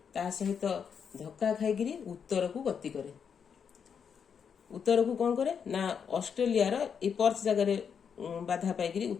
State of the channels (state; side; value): quieter; right; 7.0 dB